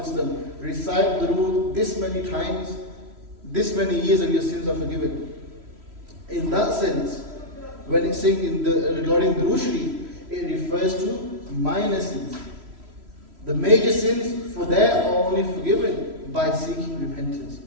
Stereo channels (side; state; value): left; late; 3.1 ms